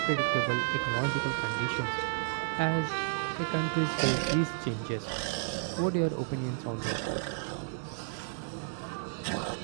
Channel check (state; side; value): silent; left; digital silence